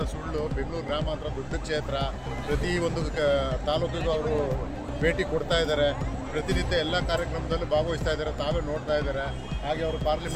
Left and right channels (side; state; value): both; identical; correlation 1.00